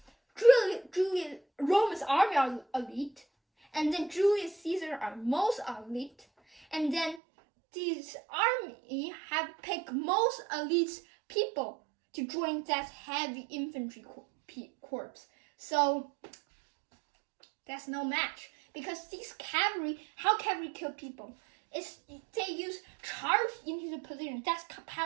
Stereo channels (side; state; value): left; drops out; at 7.2 s